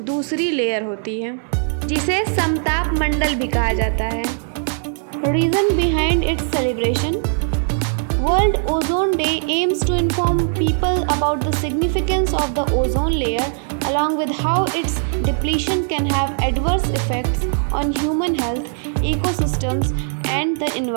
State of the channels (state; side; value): silent; left; digital silence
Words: दूसरी लेयर होती है, जिसे समताप मंडल भी कहा जाता है। Reason behind it's celebration. World Ozone Day aims to inform people about the significance of the ozone layer, along with how its depletion can have adverse effects on human health, ecosystems, and the